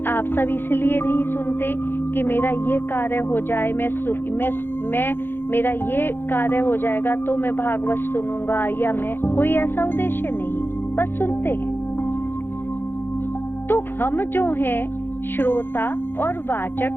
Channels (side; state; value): right; late; 0.10 ms